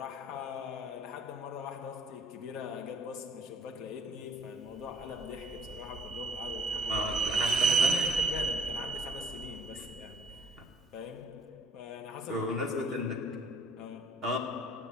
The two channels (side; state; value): both; normal; correlation 0.56